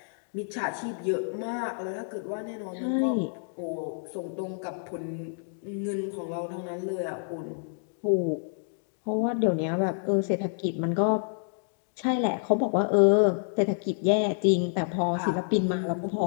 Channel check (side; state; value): right; silent; digital silence